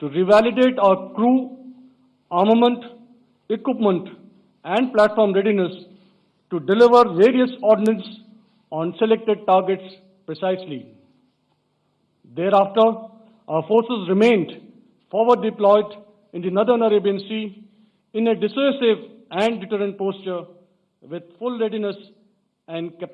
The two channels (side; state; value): both; identical; correlation 1.00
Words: revalidate our crew, armament, equipment, and platform readiness to deliver various ordnance on selected targets precisely. Thereafter, our forces remained forward deployed in the Northern Arabian Sea in a dissuasive and deterrent posture with full readiness and